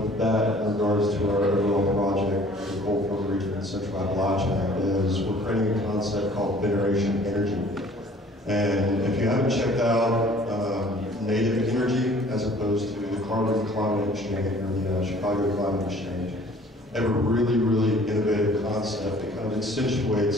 that in regards to our overall project, the Broyhill region in Central Appalachia, is we're creating a concept called Veneration Energy. And if you haven't checked out native energy as opposed to the Carbon Climate Exchange or the Chicago Climate Exchange, they have a really, really innovative concept that kind of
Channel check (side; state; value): both; normal; correlation 0.53